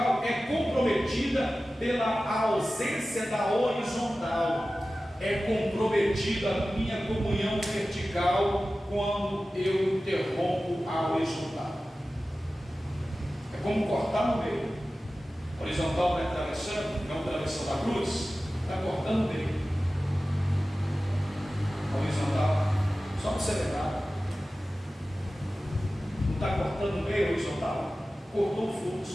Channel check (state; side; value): normal; both; correlation 0.95